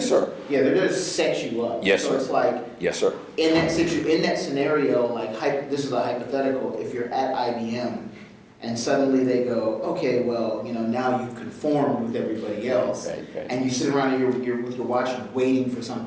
sir. Yeah, they're there to set you up. Yes, so sir. it's like Yes, sir. in that scenario, like this is a hypothetical. If you're at IBM and suddenly they go, okay, well, now you've conformed with everybody else, Right. and you sit around and you're with your watch waiting for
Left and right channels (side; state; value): both; identical; correlation 1.00